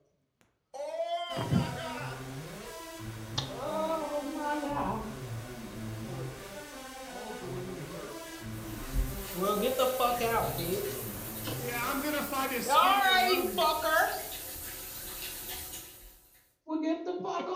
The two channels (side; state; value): both; identical; correlation 1.00